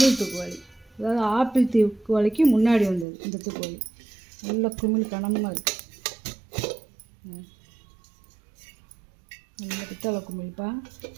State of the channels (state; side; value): drops out; left; at 3.1 s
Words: தூக்குவாளி, அதாவது ஆப்பிள் தூக்குவாளிக்கு முன்னாடி வந்தது இந்த தூக்குவாளி. நல்ல குமிழ் கனமாக இருக்குது. நல்ல பித்தளை குமிழ்ப்பா.